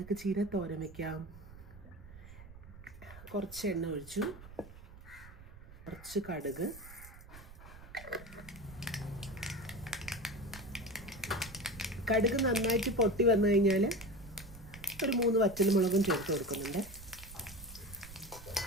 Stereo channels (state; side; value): noise; right; rumble, 17 dB below the sound